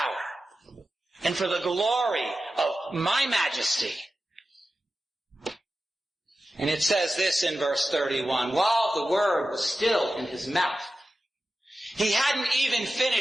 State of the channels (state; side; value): normal; both; correlation 0.93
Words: and for the glory of my majesty? And it says this in verse 31, while the word was still in his mouth, he hadn't even